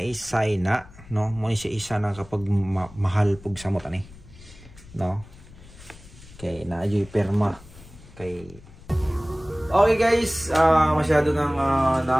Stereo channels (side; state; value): left; noise; rumble, 20 dB below the sound